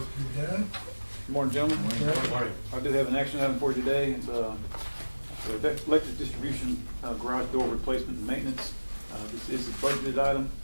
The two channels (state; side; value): inverted; both; correlation -1.00